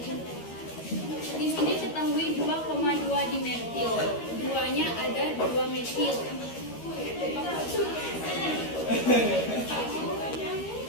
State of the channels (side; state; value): right; late; 13 ms